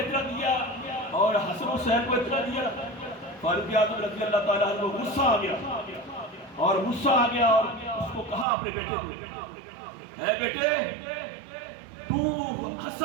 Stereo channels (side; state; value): left; drops out; at 8.5 s